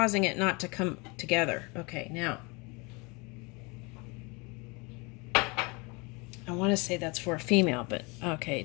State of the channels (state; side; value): quieter; right; 28.3 dB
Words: it not to come together. Okay, now I want to say that's for a female, but okay,